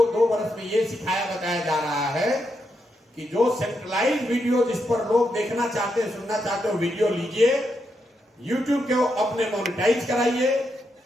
2 वर्ष में ये सिखाया बताया जा रहा है कि जो सेंट्रलाइज वीडियो जिस पर लोग देखना चाहते हैं, सुनना चाहते हो, वीडियो लीजिए, यूट्यूब के अपने मोनेटाइज कराइए,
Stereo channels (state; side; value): normal; both; correlation 0.82